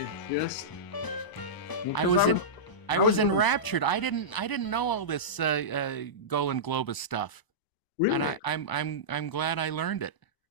of just. I was enraptured. I didn't know all this Golan Globus stuff. Really? And I'm glad I learned it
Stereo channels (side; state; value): right; late; 1.0 ms